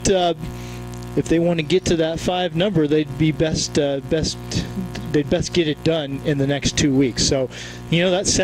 if they want to get to that 5 number, they'd be best get it done in the next 2 weeks. So, that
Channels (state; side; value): identical; both; correlation 1.00